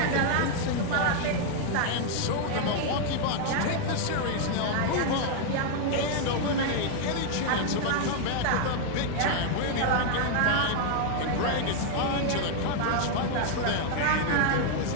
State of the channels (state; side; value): different; both; correlation 0.00